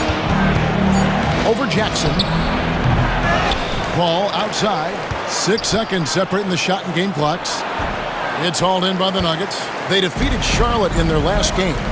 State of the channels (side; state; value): both; identical; correlation 1.00